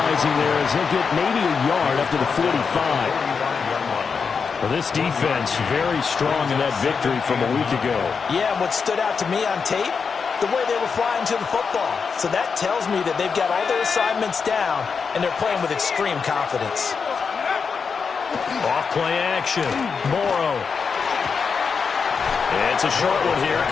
there as they'll get maybe a yard up to the 45. Well, this defense very strong in that victory from a week ago. Yeah, and what stood out to me on tape, the way they were flying to the football. So that tells me that they've got all their assignments down, and they're playing with extreme confidence. Off play action. Morrow. It's a short one here,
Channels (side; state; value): right; quieter; 5.6 dB